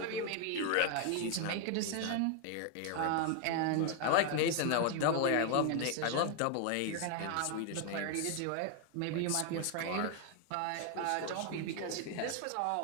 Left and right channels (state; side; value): different; both; correlation 0.01